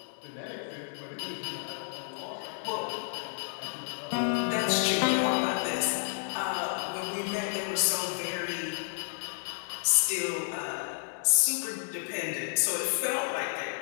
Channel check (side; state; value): right; silent; digital silence